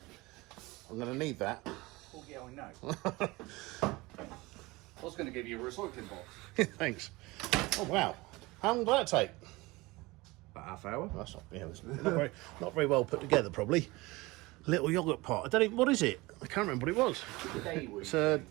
I'm going to need that. Oh, yeah, I know. I was going to give you a recycling box. Thanks. Oh, wow. How long did that take? About half hour. That's not, yeah, it's not very well put together, probably. Little yoghurt pot. I don't even, what is it? I can't remember what it was. It's a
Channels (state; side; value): quieter; left; 22.0 dB